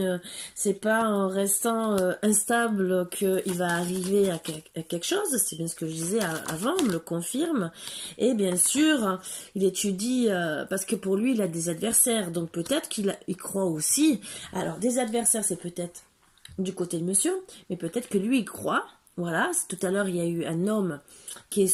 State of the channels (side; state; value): both; identical; correlation 1.00